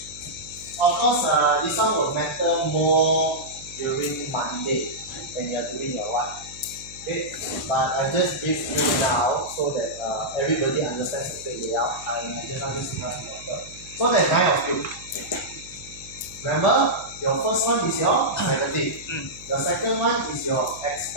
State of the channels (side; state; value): right; noise; hum, 20 dB below the sound